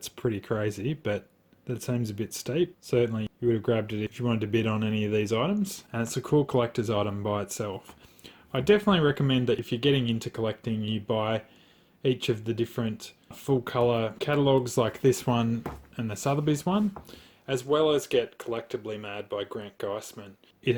pretty crazy, but that seems a bit steep. Certainly you would have grabbed it if you wanted to bid on any of these items, and it's a cool collector's item by itself. I definitely recommend that if you're getting into collecting, you buy each of the different full colour catalogues like this one and the Sothebys one, as well as get Collectively Mad by Grant Geisman. It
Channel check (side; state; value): both; identical; correlation 1.00